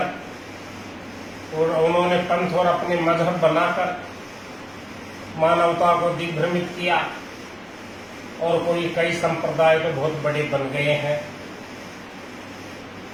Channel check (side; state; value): both; identical; correlation 1.00